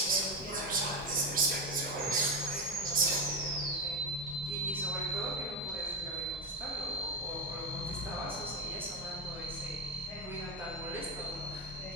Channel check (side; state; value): right; noise; hum, 24 dB below the sound